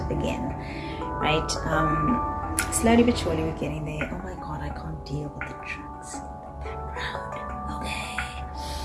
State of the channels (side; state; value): both; identical; correlation 1.00